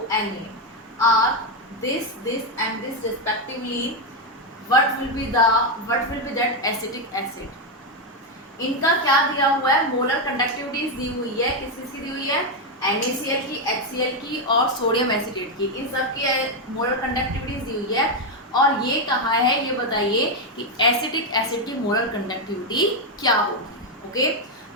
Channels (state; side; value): normal; both; correlation 0.05